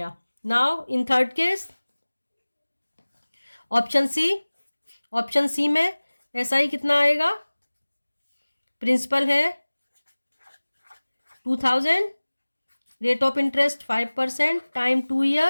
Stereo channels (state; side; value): inverted; both; correlation -1.00